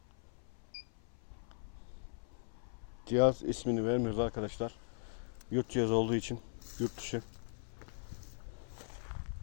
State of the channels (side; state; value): right; silent; 52 dB below the other